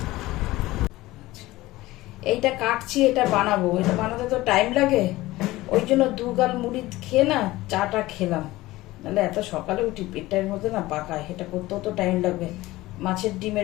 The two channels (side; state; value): right; quieter; 18.2 dB